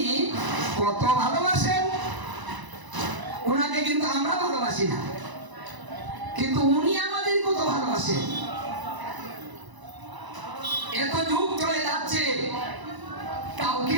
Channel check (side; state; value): left; late; 1.0 ms